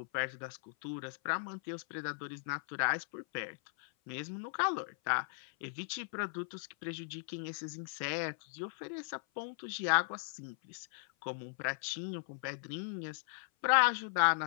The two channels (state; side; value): silent; right; 53 dB below the other